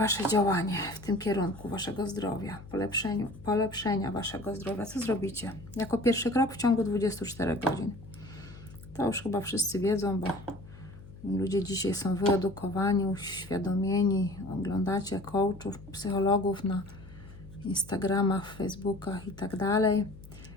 działanie w tym kierunku Waszego zdrowia, polepszenia Waszego zdrowia. Co zrobicie? Jako pierwszy krok w ciągu 24 godzin. To już chyba wszyscy wiedzą, bo ludzie dzisiaj są wyedukowani, uświadomieni. Oglądacie coachów, psychologów na Instagramach, Facebookach i tak dalej.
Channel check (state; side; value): noise; left; hum, 18 dB below the sound